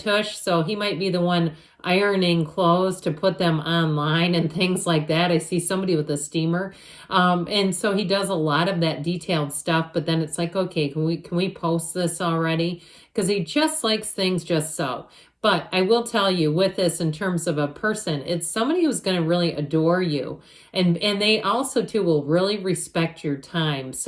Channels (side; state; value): both; identical; correlation 1.00